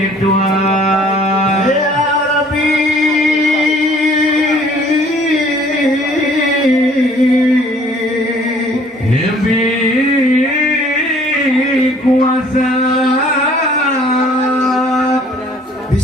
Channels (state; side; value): normal; both; correlation 0.56